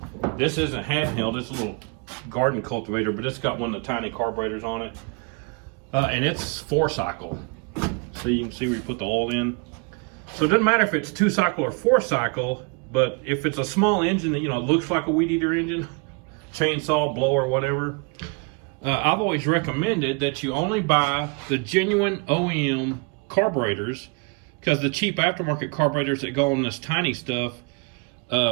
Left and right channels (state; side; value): quieter; left; 32.5 dB